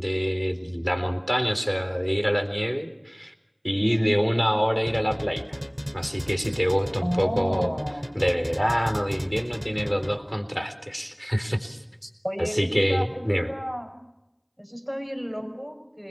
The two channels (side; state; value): both; identical; correlation 1.00